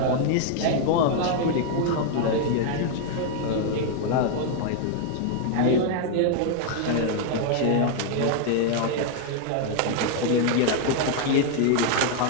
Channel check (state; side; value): different; both; correlation 0.00